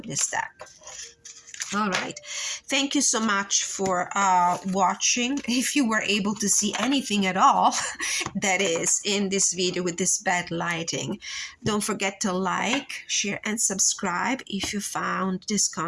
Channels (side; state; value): both; identical; correlation 1.00